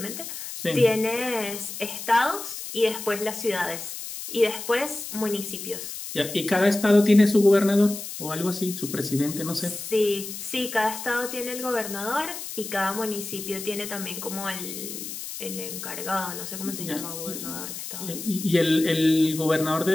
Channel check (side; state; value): left; noise; hiss, 8 dB below the sound